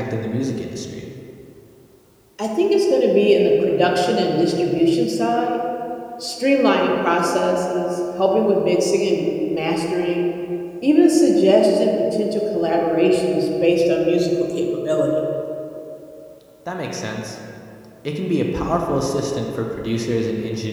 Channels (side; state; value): both; identical; correlation 1.00